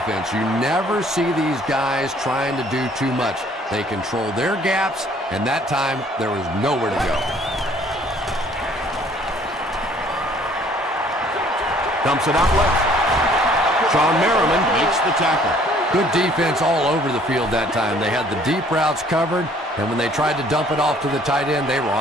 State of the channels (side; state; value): both; normal; correlation 0.58